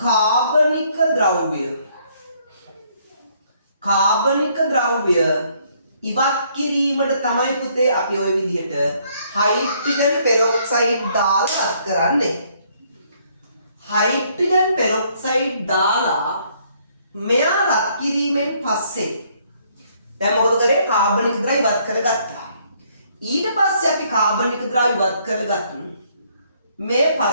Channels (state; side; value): inverted; both; correlation -0.67